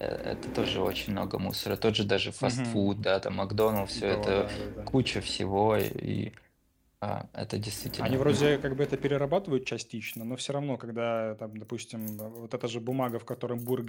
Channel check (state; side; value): identical; both; correlation 1.00